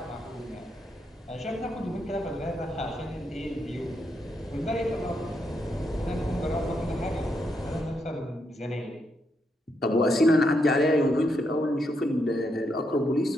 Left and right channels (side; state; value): both; normal; correlation 0.80